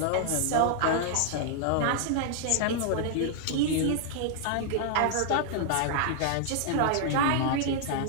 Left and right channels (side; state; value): both; different; correlation 0.00